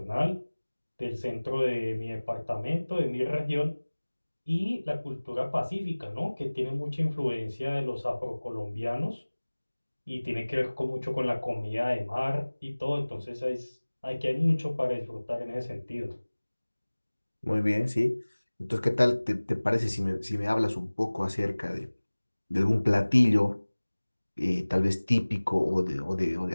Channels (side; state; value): both; inverted; correlation -1.00